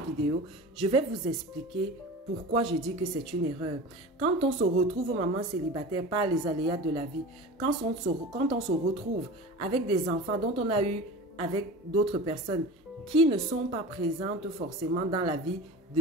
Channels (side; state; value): both; normal; correlation 0.33